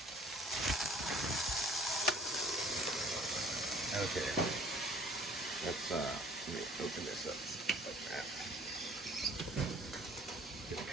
Okay, let's let me open this up like that. Just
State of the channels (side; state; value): both; normal; correlation 0.53